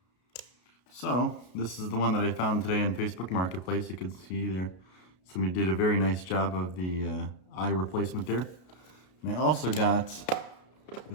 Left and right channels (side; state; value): right; late; 33 ms